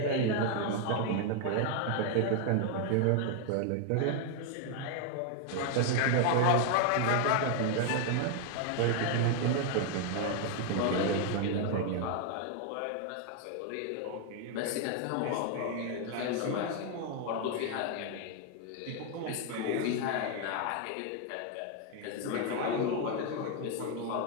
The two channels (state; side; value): different; both; correlation 0.00